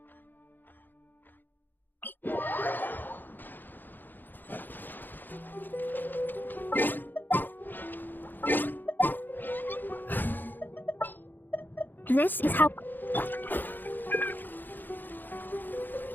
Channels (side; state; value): right; late; 0.089 ms